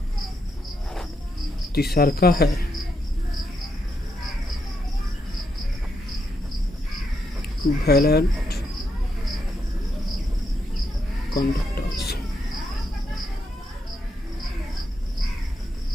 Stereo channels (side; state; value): both; normal; correlation 0.80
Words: तीसरा है वैलेंट कंडक्टेंस,